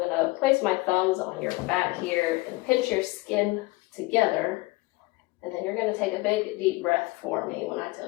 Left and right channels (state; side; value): quieter; right; 22.7 dB